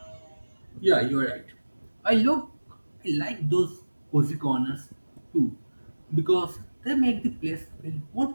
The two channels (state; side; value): inverted; both; correlation -1.00